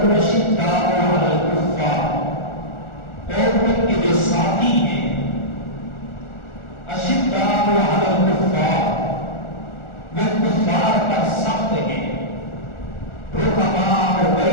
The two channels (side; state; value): right; late; 1.4 ms